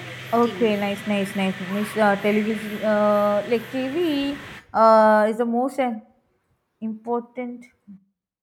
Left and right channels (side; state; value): both; identical; correlation 1.00